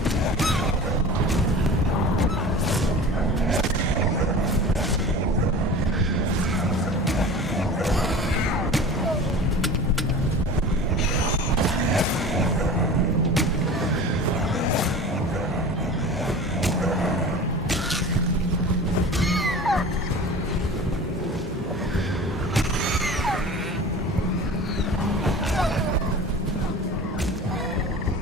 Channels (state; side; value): normal; both; correlation 0.37